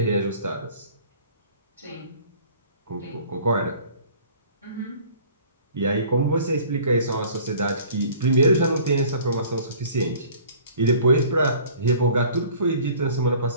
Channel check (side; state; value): both; inverted; correlation -0.49